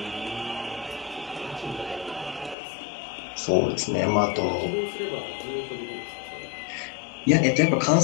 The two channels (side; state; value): right; drops out; at 2.6 s